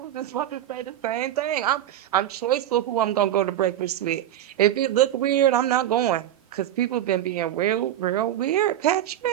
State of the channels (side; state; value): left; quieter; 12.1 dB